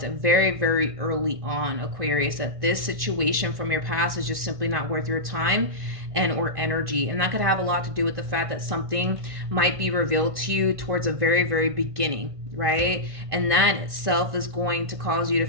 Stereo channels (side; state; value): left; late; 1.5 ms